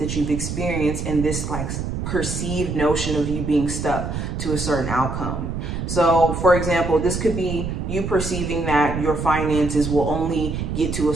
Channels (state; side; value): noise; right; rumble, 4 dB below the sound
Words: you've experienced in this like perceived notion of you being stuck to a certain outcome. So for example, this could be you perceiving that your finances will only get to a